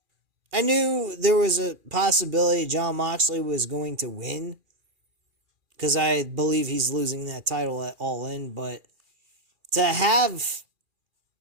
I knew there was a possibility Jon Moxley was going to win, because I believe he's losing that title at All In, but to have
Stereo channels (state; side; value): late; left; 2.4 ms